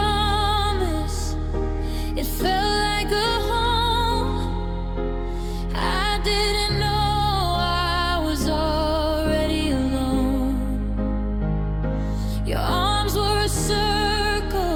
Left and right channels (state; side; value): identical; both; correlation 1.00